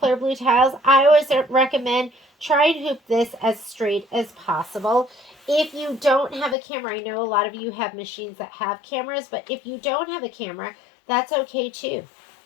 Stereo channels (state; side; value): drops out; right; at 6.6 s